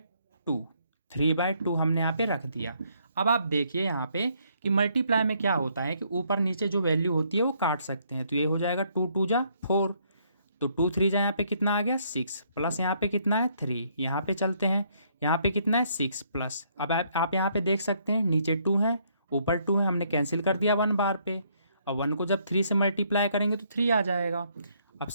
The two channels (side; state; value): both; inverted; correlation -0.69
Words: 3/2 हमने यहाँ पे रख दिया। अब आप देखिए यहाँ पे कि मल्टीप्लाई में क्या होता है कि ऊपर नीचे जो वैल्यू होती है वो काट सकते हैं। तो ये हो जाएगा 2 2 जा 4, तो 2 3 जा यहाँ पे कितना आ गया, 6, प्लस यहाँ पे कितना है 3। यहाँ पे चलते हैं, यहाँ पे कितना है 6 प्लस। अब आप यहाँ पे देख सकते हैं नीचे 2 है, ऊपर 2 है, हमने कैंसिल कर दिया 1 बार पे। और 1 को जब 3 से मल्टीप्लाई करेंगे तो 3 आ जाएगा। अब